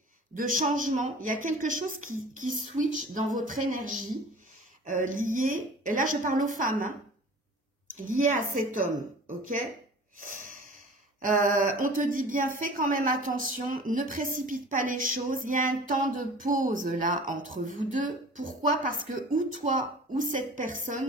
de changement. Il y a quelque chose qui switch dans votre énergie liée, et là je parle aux femmes, hein, liée à cet homme, ok? On te dit bien, fais quand même attention, ne précipite pas les choses. Il y a un temps de pause là entre vous deux. Pourquoi? Parce que ou toi ou cette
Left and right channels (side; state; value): both; normal; correlation 0.43